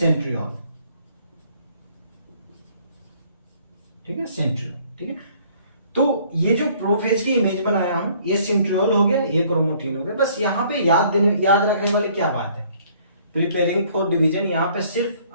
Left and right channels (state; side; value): inverted; both; correlation -0.59